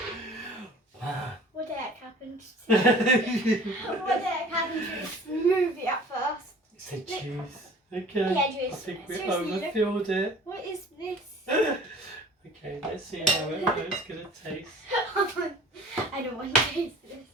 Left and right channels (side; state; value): both; normal; correlation 0.47